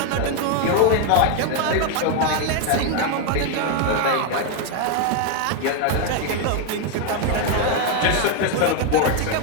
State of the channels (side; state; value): both; different; correlation 0.01